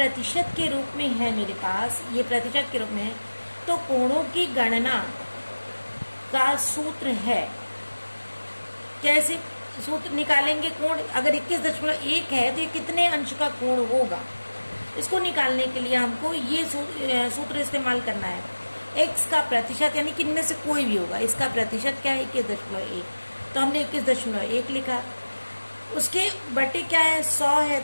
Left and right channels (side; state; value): both; inverted; correlation -1.00